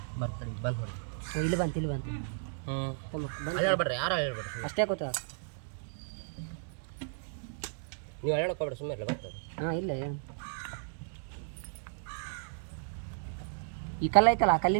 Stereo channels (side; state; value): left; silent; digital silence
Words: ಬರ್ತಾರೆ ಬಂದು ಹೊಡಿ ಇಲ್ಲಿ ಬಂತು ಹೇಳ್ಬೇಡ್ರಿ ಯಾರು ಹೇಳ್ಬೇಡ್ರಿ ಅಷ್ಟೇ ಗೊತ್ತ ನೀವು ಹೇಳೋಕೋಬೇಡ್ರಿ ಸುಮ್ಮನೆ ಇಲ್ಲ ಬರ್ತಾರೆ ಹಾಂ ಇಲ್ಲ ಏನು ಈ ಕಲ್ಲು ಐತಲ್ಲ ಆ